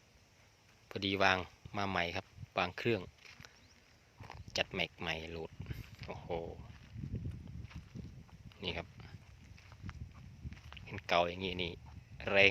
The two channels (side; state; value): both; identical; correlation 1.00